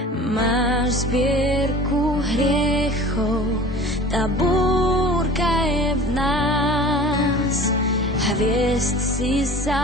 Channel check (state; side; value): normal; both; correlation 0.41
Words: Máš zbierku hriechov, tá búrka je v nás. Hviezd si